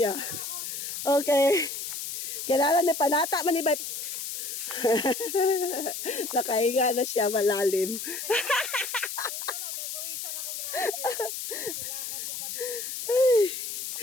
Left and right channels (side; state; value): left; noise; hiss, 5 dB below the sound